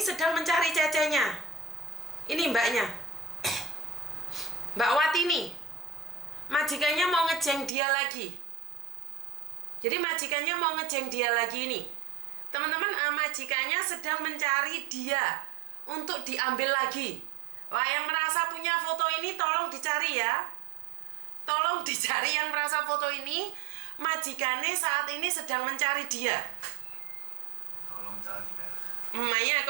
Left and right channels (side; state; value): left; drops out; at 7.7 s